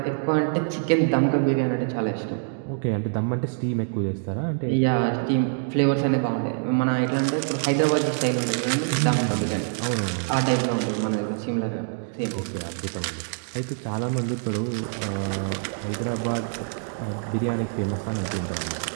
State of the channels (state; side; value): silent; left; 62 dB below the other